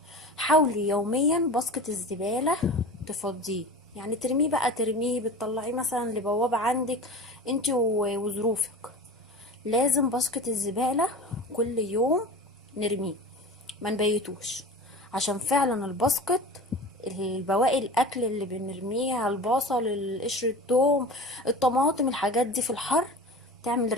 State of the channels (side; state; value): both; normal; correlation 0.34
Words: حاولي يوميا باسكت الزباله تفضيه، يعني ترميه بقى، ترميه بتطلعيه مثلا لبوابه عندك انت وظروفك. لازم باسكت الزباله كل يوم نرميه ما نبيتوش، عشان فعلا الباسكت البواقي الاكل اللي بنرميها، البصل، القشر، الثوم، الطماطم، الحاجات دي في الحر تعمل